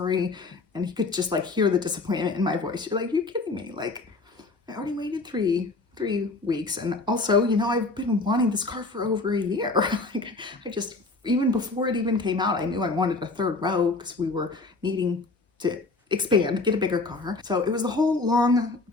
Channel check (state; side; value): quieter; right; 3.5 dB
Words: And he could just like hear the disappointment in my voice. You're like, you're kidding me. Like I already waited three weeks. And also, you know, I've been wanting this car for over a year. Like I just, even before it even came out, I knew I wanted a third row because we were needing to expand, get a bigger car. So it was the whole long,